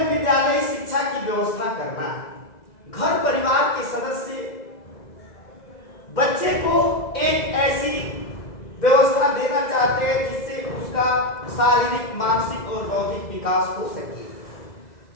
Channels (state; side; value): late; right; 2.0 ms